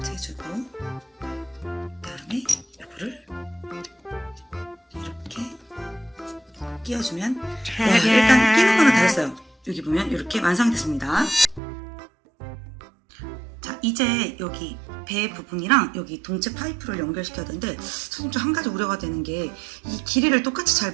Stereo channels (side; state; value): left; drops out; at 11.6 s